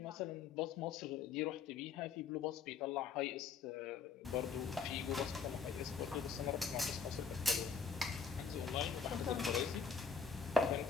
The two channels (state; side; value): quieter; right; 5.6 dB